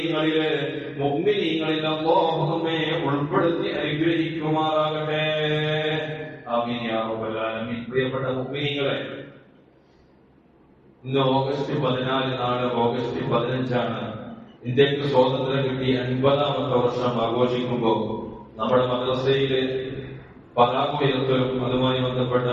മുഅ്മിനീങ്ങളിൽ അല്ലാഹു നമ്മെ ഉൾപ്പെടുത്തി അനുഗ്രഹിക്കുമാറാകട്ടെ. ആമീൻ യാ റബ്ബൽ ആലമീൻ. പ്രിയപ്പെട്ട മുഅ്മിനീങ്ങളെ, ഇന്ന് ഓഗസ്റ്റ് 14 നാളെ ഓഗസ്റ്റ് 15 ഇന്ത്യക്ക് സ്വാതന്ത്ര്യം കിട്ടി 50-ാമത്തെ വർഷം ആഘോഷിക്കുമ്പോൾ നമ്മുടെ മദ്രസയിലെ പതാക ഉയർത്തലും അതുമായി ബന്ധപ്പെട്ട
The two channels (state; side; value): identical; both; correlation 1.00